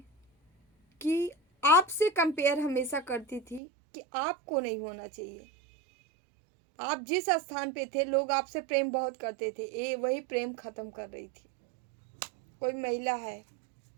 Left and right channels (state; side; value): drops out; left; at 3.6 s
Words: कि आपसे कंपेयर हमेशा करती थी कि आपको नहीं होना चाहिए। आप जिस स्थान पे थे, लोग आपसे प्रेम बहुत करते थे, ये वही प्रेम खत्म कर रही थी। कोई महिला है,